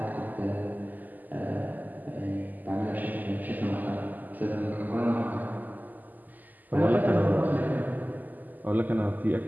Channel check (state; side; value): late; left; 0.084 ms